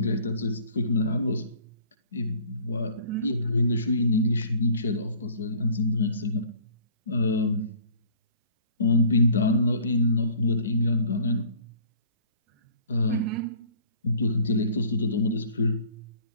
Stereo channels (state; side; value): inverted; both; correlation -0.51